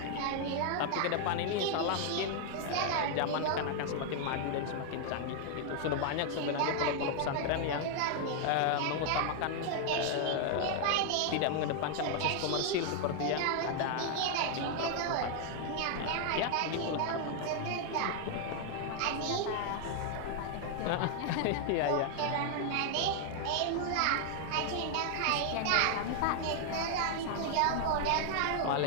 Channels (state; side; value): different; both; correlation 0.00